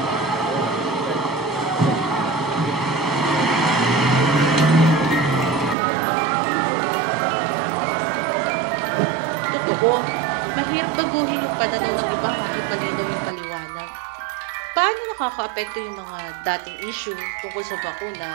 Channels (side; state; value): left; drops out; at 5.8 s